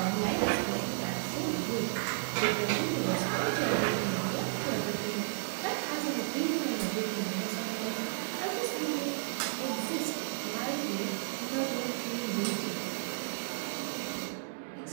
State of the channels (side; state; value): left; silent; 56 dB below the other